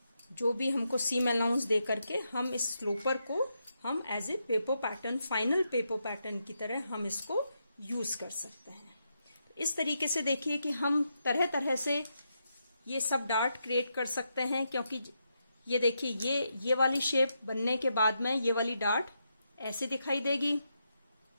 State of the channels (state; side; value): inverted; both; correlation -0.83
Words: जो भी हमको सीम अलाउंस दे करके हम इस स्लोपर को हम as a paper pattern, final paper pattern की तरह हम इसको यूज कर सकते हैं। इस तरीके से देखिए कि हम तरह तरह से ये सब डार्ट क्रिएट कर सकते हैं, क्योंकि ये देखिए, ये वाली शेप बनने के बाद में ये वाली डार्ट ऐसे दिखाई देगी।